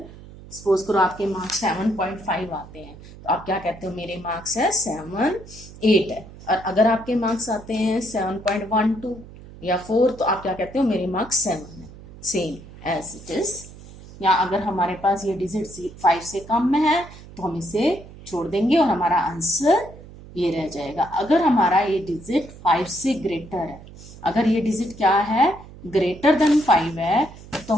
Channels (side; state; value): right; noise; hum, 18 dB below the sound